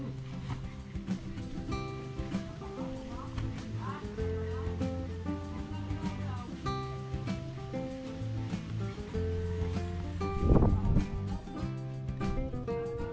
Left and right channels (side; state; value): both; identical; correlation 1.00